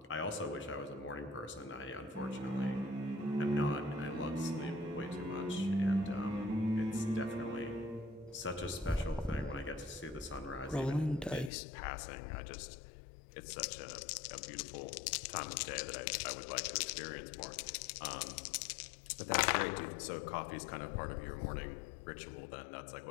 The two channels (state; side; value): drops out; right; at 11.5 s